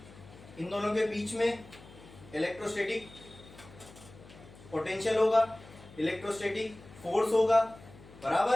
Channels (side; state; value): left; noise; hum, 20 dB below the sound